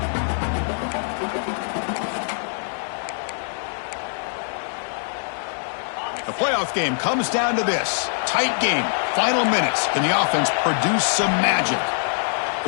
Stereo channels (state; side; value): silent; right; digital silence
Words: The playoff game comes down to this. Tight game. Final minutes. Can the offense produce some magic?